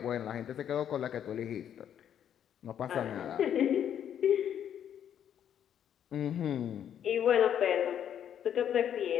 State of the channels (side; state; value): right; quieter; 9.5 dB